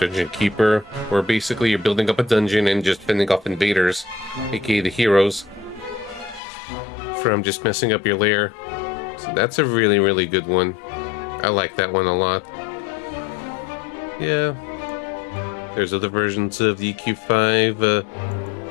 Keeper, where basically you're building up a dungeon and just fending off invaders, aka the heroes, from just messing up your lair. So that's a really good one. I like that one a lot. Yeah. There's other versions of the EQ5.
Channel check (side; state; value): right; drops out; at 6.4 s